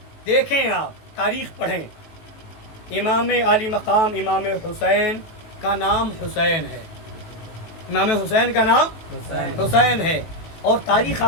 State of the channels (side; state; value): right; late; 18 ms